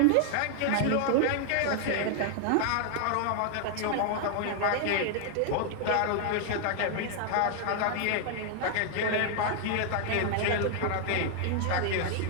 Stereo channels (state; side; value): different; both; correlation 0.00